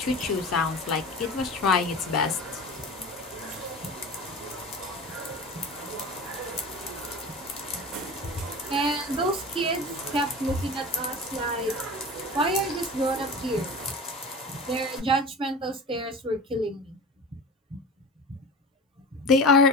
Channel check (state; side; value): normal; both; correlation 0.33